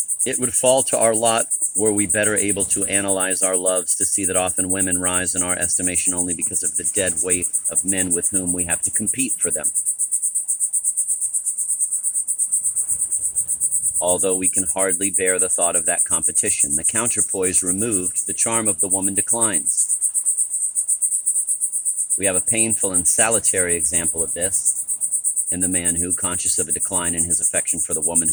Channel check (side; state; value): both; identical; correlation 1.00